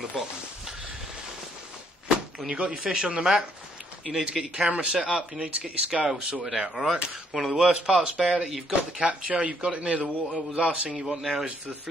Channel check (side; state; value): both; normal; correlation 0.69